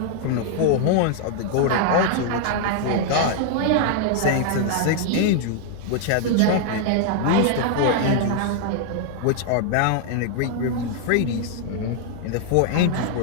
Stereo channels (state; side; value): different; both; correlation 0.00